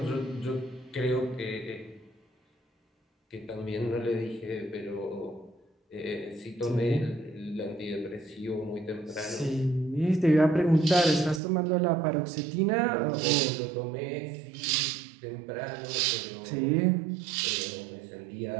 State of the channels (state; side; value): drops out; left; at 11.4 s